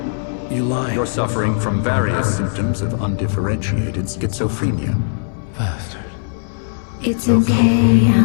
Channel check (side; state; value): right; silent; digital silence